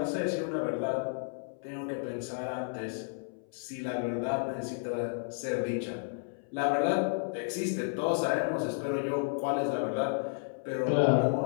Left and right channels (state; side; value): silent; right; 56 dB below the other